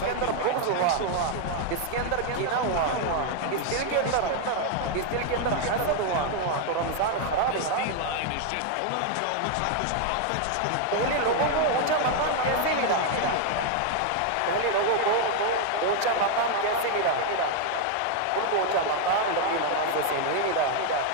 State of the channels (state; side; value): different; both; correlation 0.00